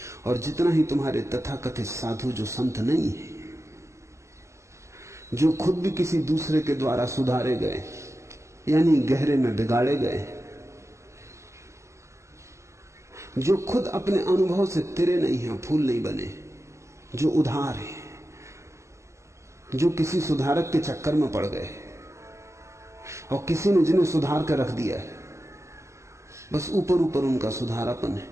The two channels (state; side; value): late; left; 0.14 ms